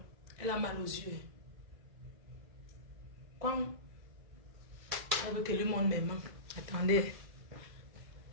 elle a mal aux yeux. Quand elle veut que lui montre mes mains. Attendez.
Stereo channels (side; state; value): left; late; 1.9 ms